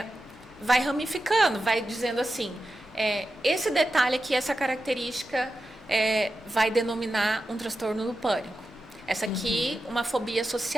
ramificando, vai dizendo assim, esse detalhe aqui, essa característica vai denominar um transtorno do pânico. Essa aqui, uma fobia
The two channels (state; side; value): normal; both; correlation 0.91